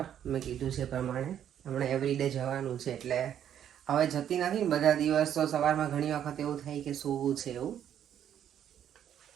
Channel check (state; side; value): quieter; left; 9.8 dB